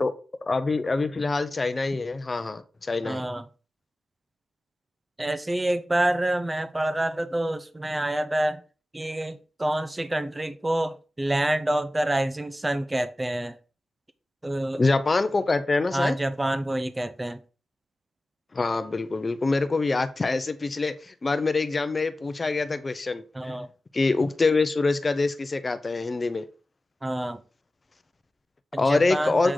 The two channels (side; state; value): both; normal; correlation 0.96